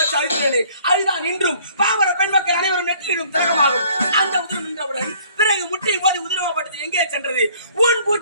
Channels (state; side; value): inverted; both; correlation -0.56